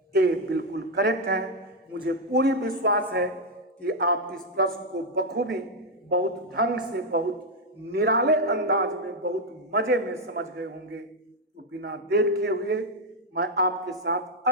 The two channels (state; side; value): normal; both; correlation 0.02